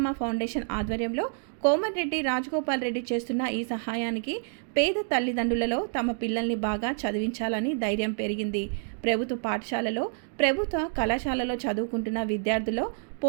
ఫౌండేషన్ ఆధ్వర్యంలో కోమటిరెడ్డి రాజగోపాల్ రెడ్డి చేస్తున్న ఈ సహాయానికి పేద తల్లిదండ్రులలో తమ పిల్లల్ని బాగా చదివించాలని ధైర్యం పెరిగింది. ప్రభుత్వ పాఠశాలలో, ప్రభుత్వ కళాశాలలో చదువుకుంటున్న విద్యార్థుల్లో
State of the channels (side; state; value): left; silent; 59 dB below the other